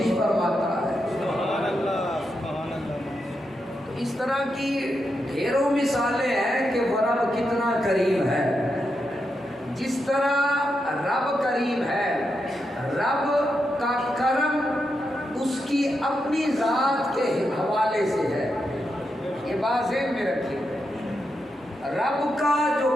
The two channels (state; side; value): normal; both; correlation 0.85